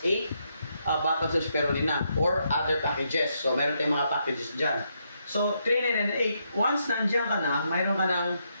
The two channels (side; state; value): both; inverted; correlation -0.78